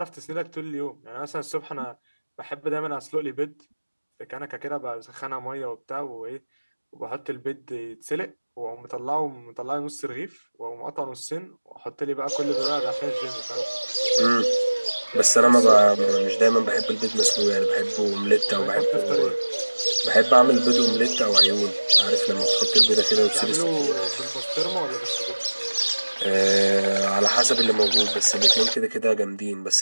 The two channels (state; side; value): inverted; both; correlation -1.00